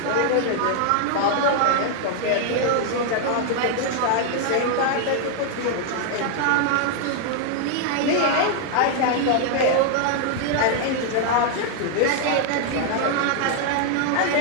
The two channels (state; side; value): different; both; correlation 0.00